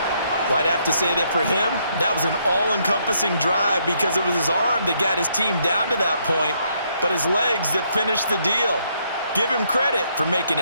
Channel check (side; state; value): both; inverted; correlation -0.73